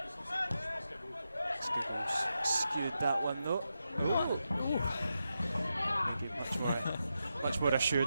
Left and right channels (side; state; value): both; inverted; correlation -0.87